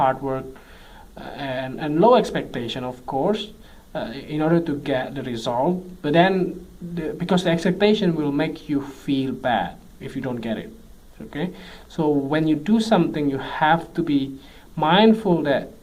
work, and low expectation, of course, in order to get the result. But then, because the expectation will make you feel bad if you don't get it. Okay, so when you do something, you have to be mindful that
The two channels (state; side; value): identical; both; correlation 1.00